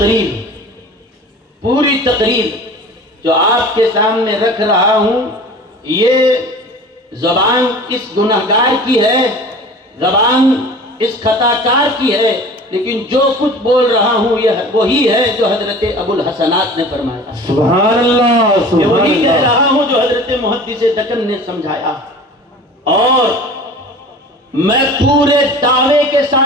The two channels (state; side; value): normal; both; correlation 0.41